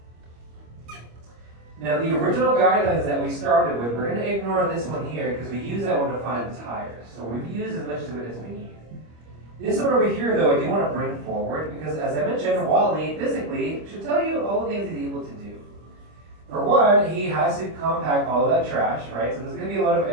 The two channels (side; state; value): left; late; 25 ms